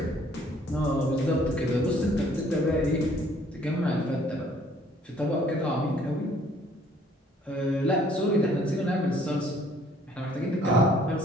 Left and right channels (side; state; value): both; normal; correlation 0.60